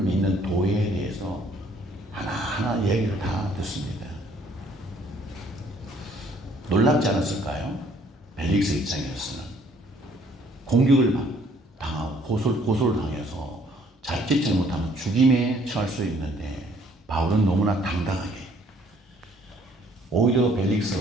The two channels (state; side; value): normal; both; correlation 0.62